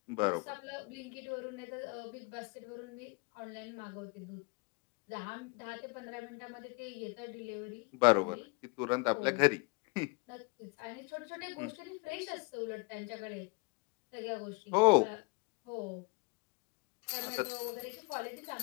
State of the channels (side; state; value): right; quieter; 28.7 dB